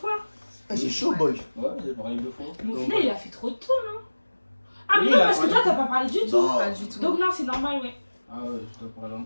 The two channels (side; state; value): both; inverted; correlation -1.00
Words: J'ai chaud, boy. Ouais, j'ai parlé 2 fois. Mais au Donc, final, il a fait trop de tours, non? Ah, mais Oui, non, il a parce que parlé toi, t'as pas parlé du tout. Non. Pas du tout. Donc, non, c'est normal, ouais. Ah ouais, je dois parler